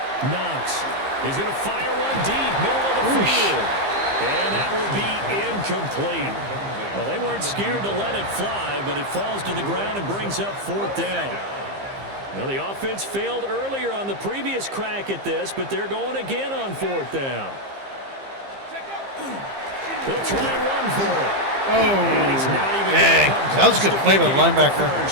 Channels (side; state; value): left; late; 15 ms